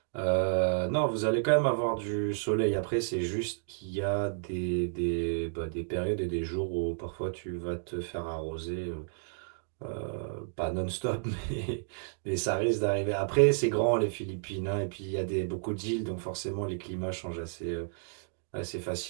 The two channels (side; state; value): left; silent; digital silence